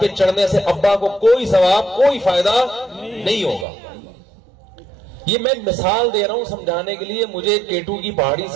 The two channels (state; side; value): drops out; left; at 3.7 s